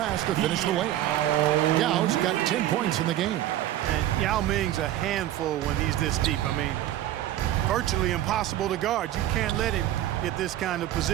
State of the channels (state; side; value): quieter; left; 13.2 dB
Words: to finish the way. Yao's got 10 points in the game. And Yao Ming's a handful when he's this deep. I mean, virtually impossible to guard. You can't let him get this kind of